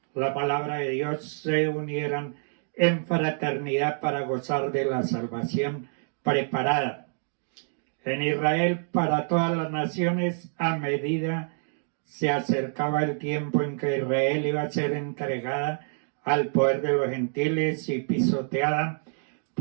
la palabra de Dios se unieran en fraternidad para gozar de la salvación preparada en Israel para todas las naciones a medida se acercaba el tiempo en que Israel iba a ser entregada al poder de los gentiles y pisoteada.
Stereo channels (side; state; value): left; silent; digital silence